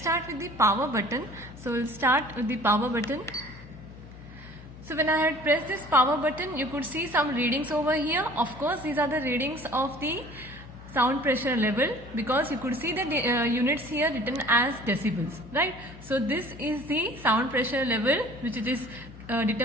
with the power button. So we'll start with the power button. So when I had pressed this power button, you could see some readings over here. Of course, these are the readings of the sound pressure level, because you could see the units here written as decibels, right? So this is the sound pressure level which it is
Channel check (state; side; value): noise; left; hum, 17 dB below the sound